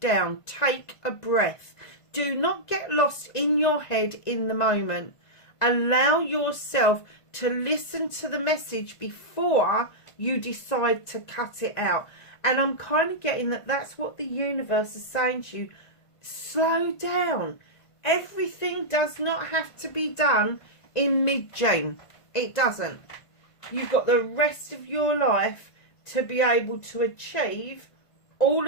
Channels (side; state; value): right; late; 1.5 ms